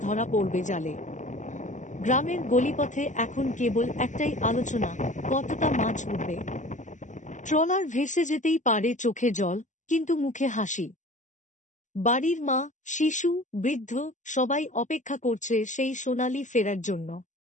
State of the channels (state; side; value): late; right; 0.36 ms